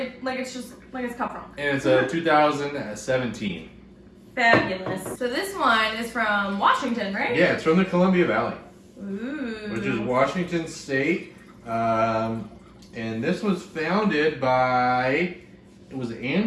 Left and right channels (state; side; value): identical; both; correlation 1.00